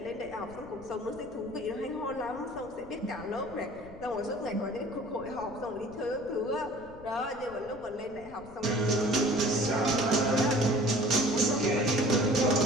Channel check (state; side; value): noise; left; rumble, 20 dB below the sound